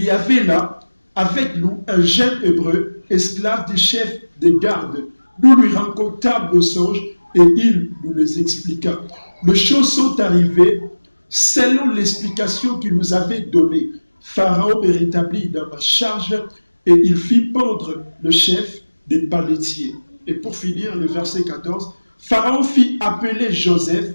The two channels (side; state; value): both; inverted; correlation -1.00